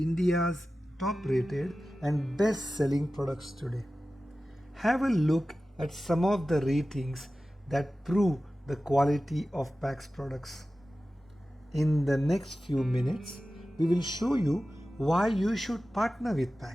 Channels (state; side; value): normal; both; correlation 0.95